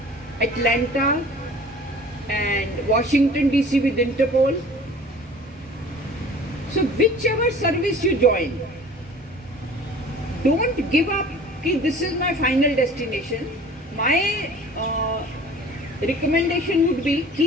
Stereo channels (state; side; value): normal; both; correlation 0.45